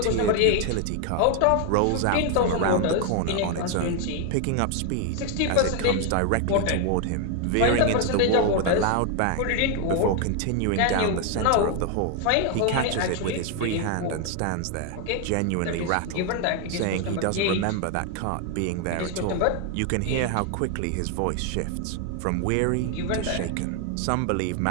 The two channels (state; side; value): different; both; correlation 0.01